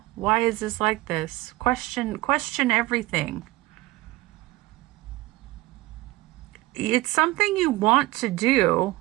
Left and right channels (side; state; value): left; quieter; 19.3 dB